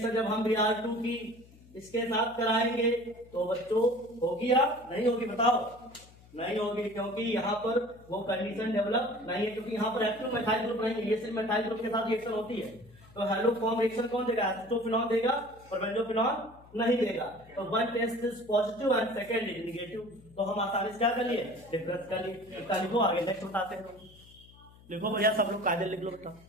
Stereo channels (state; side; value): noise; left; hum, 24 dB below the sound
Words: जब हम Br2 की इसके साथ कराएंगे तो बच्चों होगी या नहीं होगी? बताओ। नहीं होगी, क्योंकि यहाँ पर वो कंडीशन डेवलप नहीं है, क्योंकि यहाँ पर एक्टिव मेथाइल ग्रुप नहीं है, ये सिर्फ मेथाइल ग्रुप के साथ रिएक्शन होती है। तो हेलो फॉर्म रिएक्शन कौन देगा? एसिटोफिनॉल देगा और बेंजोफिनॉल नहीं देगा। तो one test is positive and second is negative, तो हम आसानी से क्या कर लिए? डिफरेंस कर लिए। इसका लिखो, आगे नेक्स्ट बताते हैं। लिखो भैया, सब लोग कायदे लिख लो बेटा।